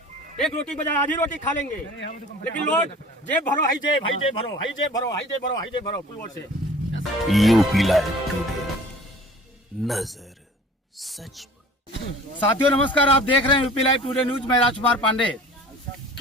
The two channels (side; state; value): both; normal; correlation 0.45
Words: एक रोटी बजाय आधी रोटी खा लेंगे, लेकिन लोग जेब भरो, हाई जेब, हाई जेब भरो, हाई जेब भरो, हाई जेब भरो, हाई जेब भरो पुलवर से। यूपी लाइव टुडे, नजर सच पर। साथियों नमस्कार, आप देख रहे हैं यूपी लाइव टुडे न्यूज। मैं राजकुमार पांडे।